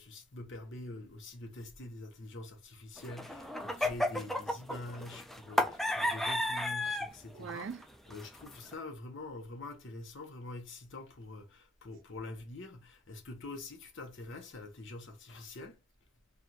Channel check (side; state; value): both; normal; correlation 0.73